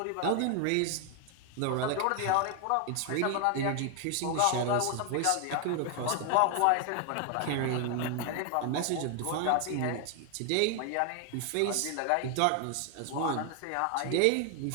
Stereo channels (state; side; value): different; both; correlation 0.00